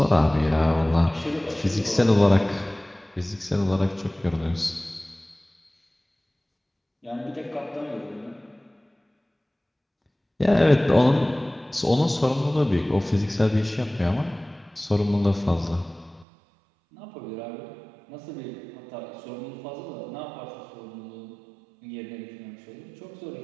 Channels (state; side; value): drops out; left; at 16.2 s